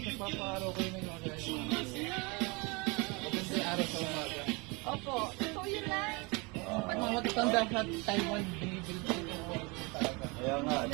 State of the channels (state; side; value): quieter; left; 28.0 dB